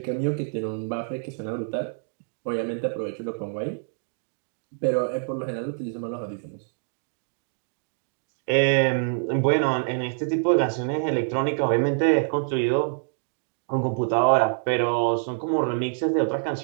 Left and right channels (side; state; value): left; silent; digital silence